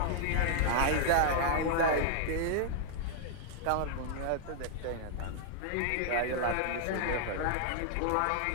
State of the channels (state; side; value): different; both; correlation -0.01